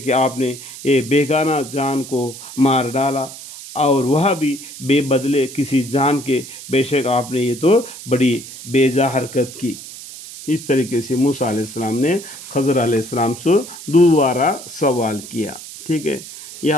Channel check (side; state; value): right; noise; hiss, 14 dB below the sound